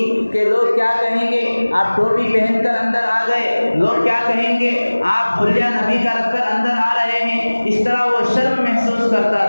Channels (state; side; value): inverted; both; correlation -1.00